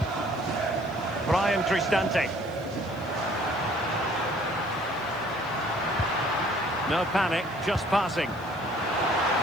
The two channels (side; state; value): left; noise; hiss, 25 dB below the sound